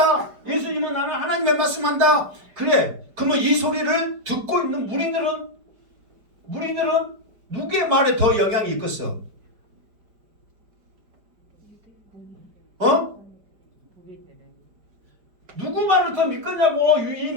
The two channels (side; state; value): left; late; 4.9 ms